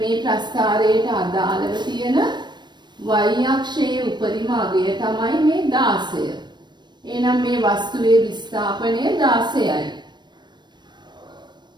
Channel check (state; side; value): late; left; 0.22 ms